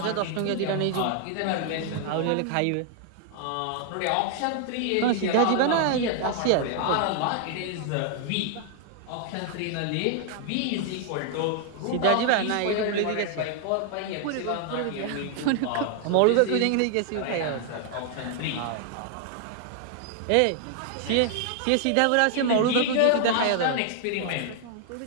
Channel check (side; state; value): both; different; correlation 0.00